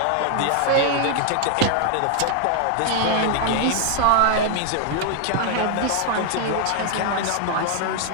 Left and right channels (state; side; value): different; both; correlation 0.00